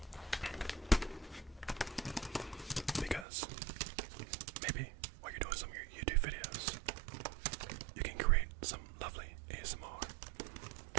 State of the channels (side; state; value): left; drops out; at 3.2 s